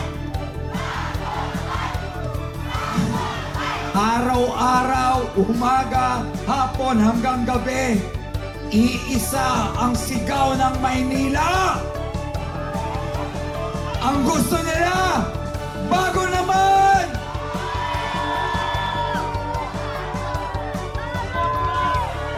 Araw-araw, umaga, hapon hanggang gabi, iisa ang sigaw ng Maynila. Ang gusto nila, bago naman!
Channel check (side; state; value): both; identical; correlation 1.00